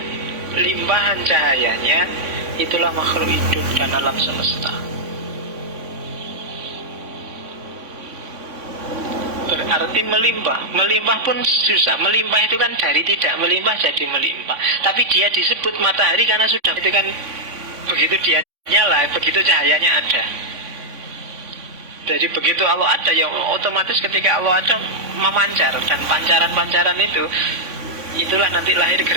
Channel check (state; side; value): late; left; 3.5 ms